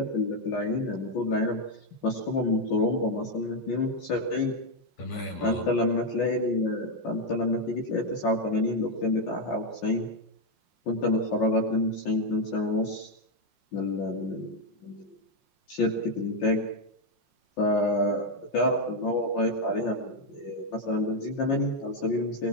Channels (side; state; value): right; late; 5.6 ms